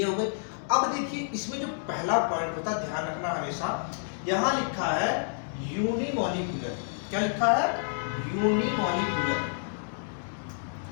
हो गई। अब देखिए इसमें जो पहला पॉइंट होता है, ध्यान रखना हमेशा, यहां लिखा है यूनिमॉलिक्यूलर। क्या लिखा है? यूनिमॉलिक्यूलर।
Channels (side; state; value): right; silent; digital silence